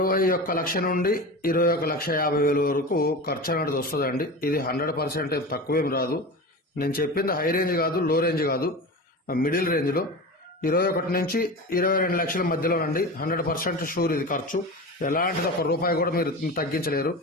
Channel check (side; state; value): both; normal; correlation 0.28